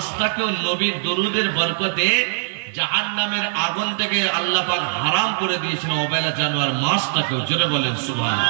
নবীর দরুদের বরকতে জাহান্নামের আগুন থেকে আল্লাহ পাক হারাম করে দিয়েছেন, অবেলা জানোয়ার মাছটাকেও। জোরে বলেন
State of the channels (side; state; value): left; silent; digital silence